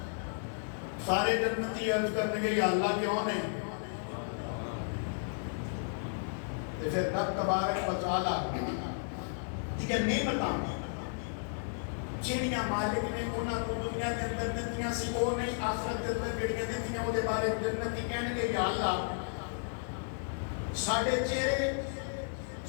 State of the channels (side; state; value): right; silent; 56 dB below the other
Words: سارے جنتی عرض کرنے گے یا اللہ کیوں نے پھر رب تبارک و تعالیٰ ٹھیک ہے نعمتاں جنیاں مالک نے انہاں کو دنیا کے اندر دتیاں سی وہ نہیں آخرت کے اندر جڑیاں دتیاں وہ دے بارے جنتی کہنے گے یا اللہ ساڈے چہرے